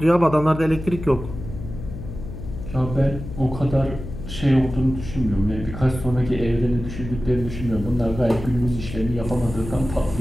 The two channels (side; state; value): left; noise; hum, 10 dB below the sound